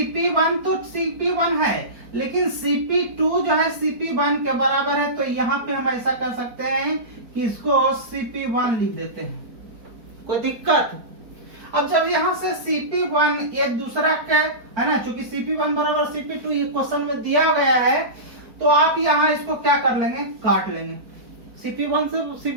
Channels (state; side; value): late; left; 4.5 ms